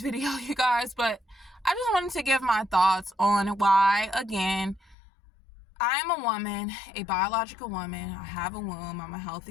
you guys, but I just wanted to give my thoughts on why, again, I am a woman, a biological woman. I have a womb. I'm a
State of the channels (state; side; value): drops out; right; at 5.0 s